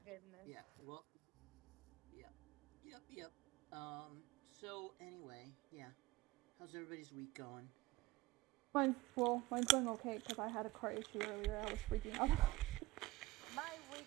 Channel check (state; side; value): quieter; left; 19.0 dB